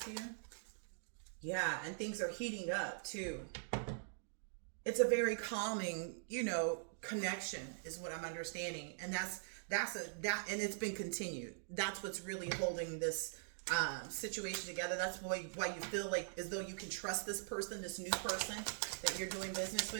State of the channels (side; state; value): left; silent; digital silence